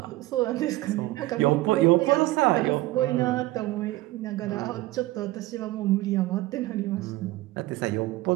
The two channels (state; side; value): quieter; left; 18.3 dB